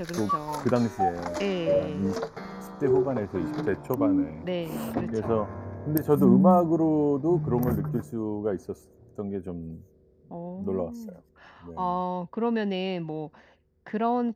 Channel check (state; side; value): identical; both; correlation 1.00